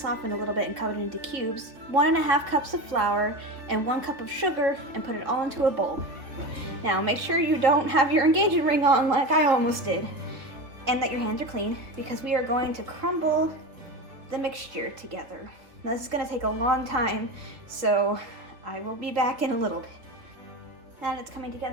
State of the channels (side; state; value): left; late; 3.7 ms